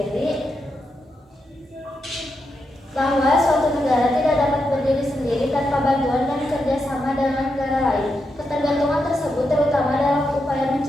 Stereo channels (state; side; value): normal; both; correlation 0.85